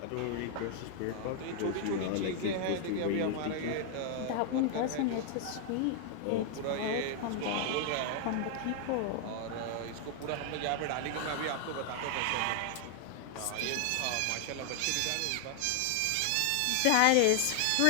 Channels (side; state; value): both; different; correlation 0.00